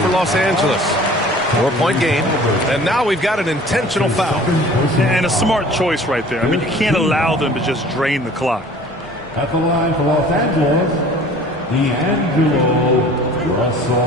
Los Angeles. 4-point game. And now we've got an intentional foul. And a smart choice right there. I mean, you can't allow them to just drain the clock. At the line for Los Angeles, D'Angelo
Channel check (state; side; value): normal; both; correlation 0.47